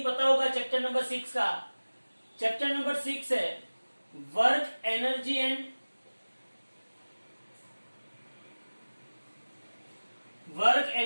पता होगा चैप्टर नंबर 6 का। चैप्टर नंबर 6 है वर्क एनर्जी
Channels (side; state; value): both; inverted; correlation -1.00